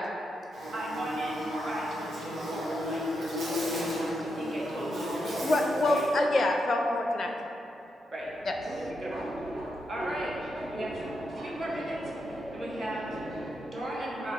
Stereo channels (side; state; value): both; normal; correlation 0.84